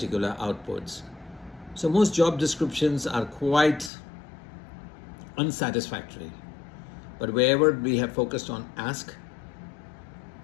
outputs. So most job descriptions are quite unsatisfactory. But wherever we have focused on ask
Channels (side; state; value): right; drops out; at 3.9 s